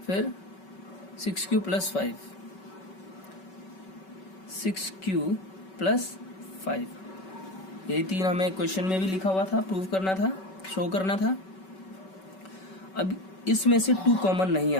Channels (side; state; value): right; late; 5.3 ms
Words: फिर 6q प्लस 5, 6q प्लस 5। यही 3 हमें क्वेश्चन में भी लिखा हुआ था, प्रूव करना था, शो करना था। अब इसमें से 2 कॉमन नहीं